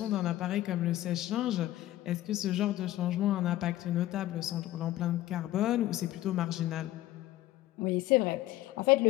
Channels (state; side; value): quieter; right; 15.2 dB